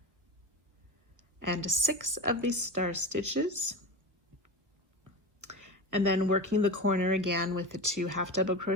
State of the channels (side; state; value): left; late; 1.4 ms